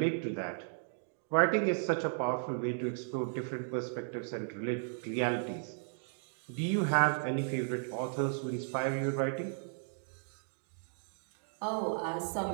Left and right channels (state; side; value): silent; left; digital silence